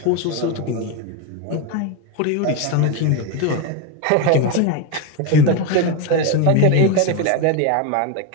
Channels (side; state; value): both; different; correlation 0.03